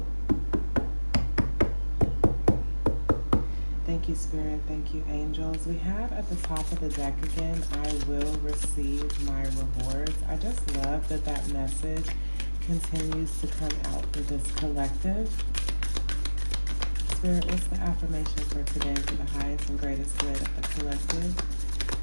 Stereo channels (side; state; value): both; inverted; correlation -1.00